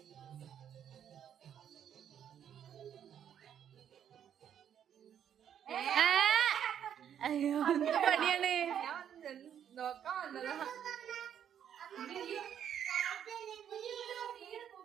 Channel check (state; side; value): quieter; left; 9.2 dB